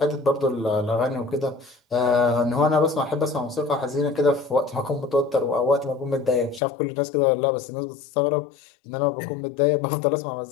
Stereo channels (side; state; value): right; drops out; at 6.6 s